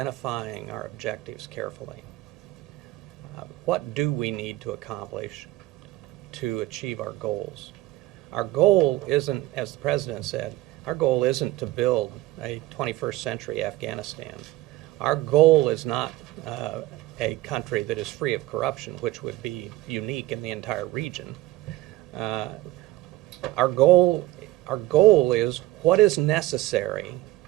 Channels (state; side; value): quieter; left; 17.3 dB